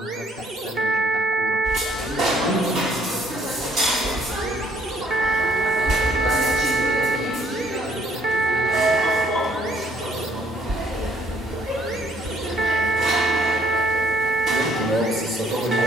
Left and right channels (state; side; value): normal; both; correlation 0.65